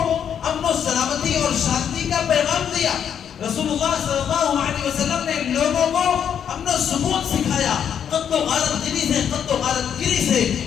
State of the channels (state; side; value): quieter; right; 8.5 dB